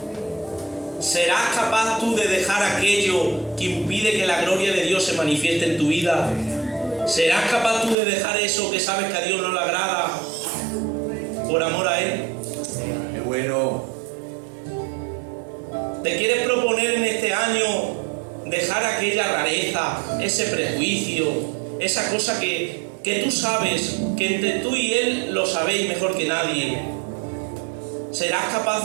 ¿Serás capaz tú de dejar aquello que impide que la gloria de Dios se manifieste en tu vida? ¿Serás capaz tú de dejar eso que sabes que a Dios no le agrada por amor a Él? Qué bueno. ¿Te quieres proponer en este año dejar aquella rareza, ese prejuicio, esa cosa que tú sabes, que entre tú y Él lo sabéis mejor que nadie? ¿Serás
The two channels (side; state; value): left; drops out; at 8.0 s